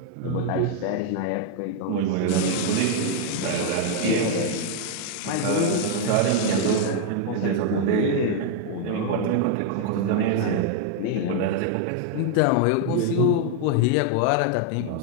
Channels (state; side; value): different; both; correlation 0.00